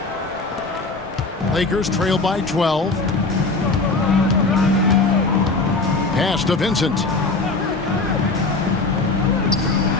Lakers trail by 12. Pass to Vincent.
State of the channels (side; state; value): right; quieter; 3.6 dB